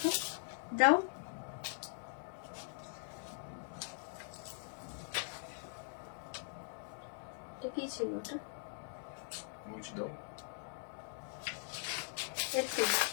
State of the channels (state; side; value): silent; right; digital silence